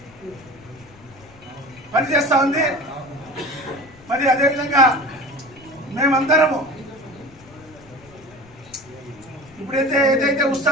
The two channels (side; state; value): left; noise; rumble, 24 dB below the sound